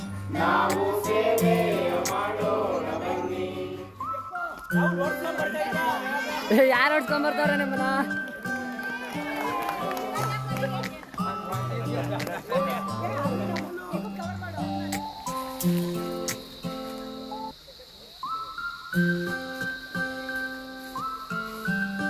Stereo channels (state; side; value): identical; both; correlation 1.00